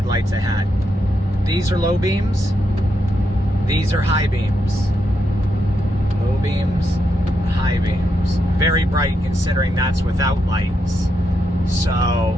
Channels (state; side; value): normal; both; correlation 0.82